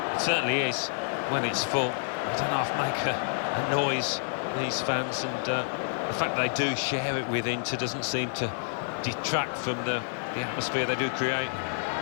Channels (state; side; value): silent; right; digital silence